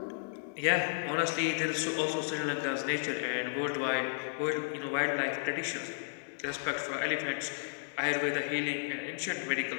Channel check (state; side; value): silent; right; digital silence